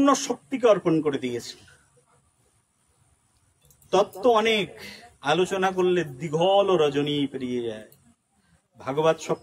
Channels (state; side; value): identical; both; correlation 1.00